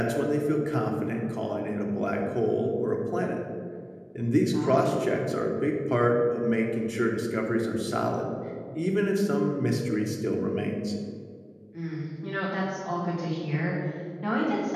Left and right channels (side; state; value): both; identical; correlation 1.00